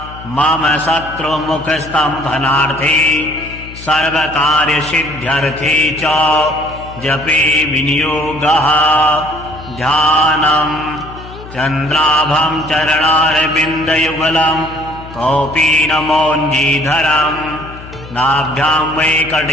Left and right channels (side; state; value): left; noise; hum, 15 dB below the sound